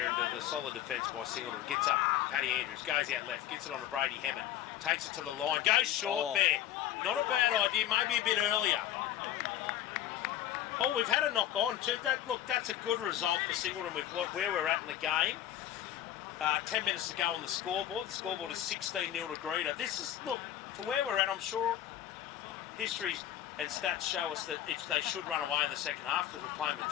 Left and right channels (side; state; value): right; quieter; 11.8 dB